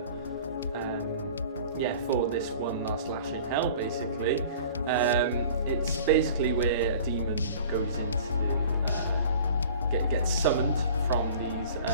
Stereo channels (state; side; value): inverted; both; correlation -0.45